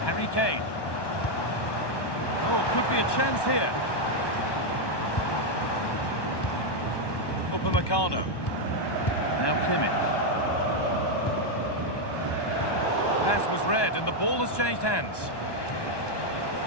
Harry Kane. Oh, could be a chance here. Upamecano. Now Kimmich. Pass was read and the ball has changed hands.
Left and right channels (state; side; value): late; right; 1.1 ms